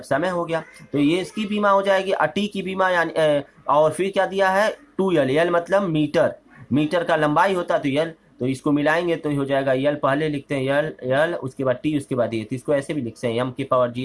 समय हो गया, तो ये इसकी बीमा हो जाएगी। और T की बीमा यानी और फिर क्या दिया है 2l, L मतलब मीटर, मीटर का लंबाई होता है तो L, तो इसको मिलाएंगे तो हो जाएगा L, पहले लिखते हैं L उसके बाद T उसके बाद ये, तो इसको ऐसे भी लिखते हैं m के पावर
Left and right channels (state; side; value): identical; both; correlation 1.00